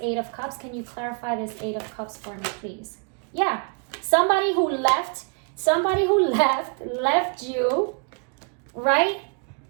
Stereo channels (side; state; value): left; quieter; 37.8 dB